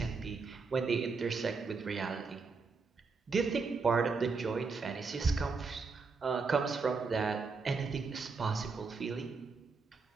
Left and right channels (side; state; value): left; quieter; 4.6 dB